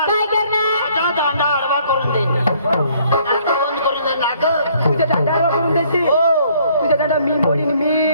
दांडा आडवा करून देईन नाक बंद करून देईन नाक तुझ्या दांडावर करून देते हो तुझ्या दांडा मी मोडीन मी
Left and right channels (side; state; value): both; inverted; correlation -0.63